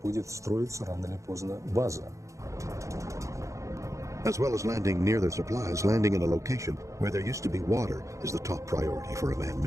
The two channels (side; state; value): left; late; 0.15 ms